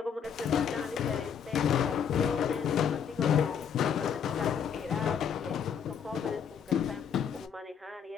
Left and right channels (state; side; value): quieter; right; 7.5 dB